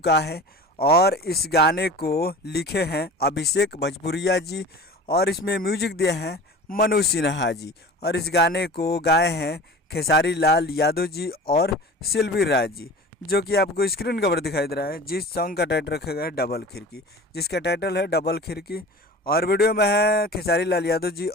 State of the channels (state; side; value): normal; both; correlation 0.38